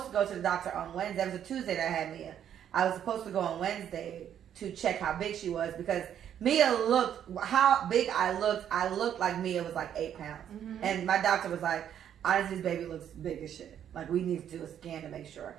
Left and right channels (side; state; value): left; quieter; 9.7 dB